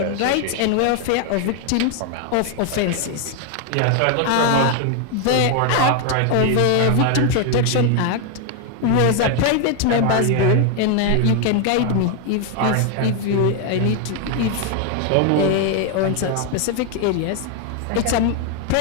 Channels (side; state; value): both; different; correlation 0.01